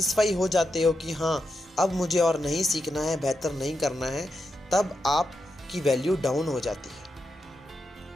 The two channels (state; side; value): normal; both; correlation 0.86